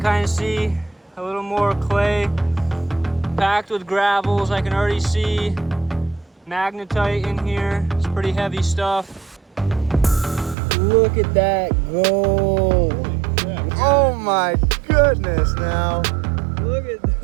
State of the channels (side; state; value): left; drops out; at 10.6 s